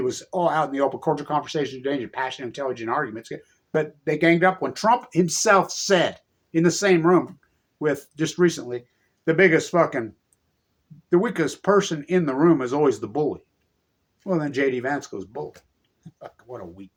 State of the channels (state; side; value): identical; both; correlation 1.00